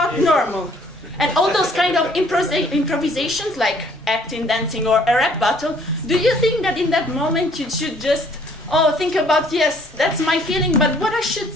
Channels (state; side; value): normal; both; correlation 0.61